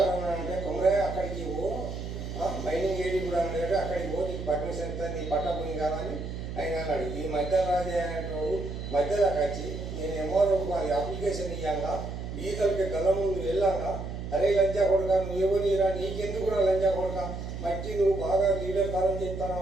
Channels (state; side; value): noise; right; hum, 7 dB below the sound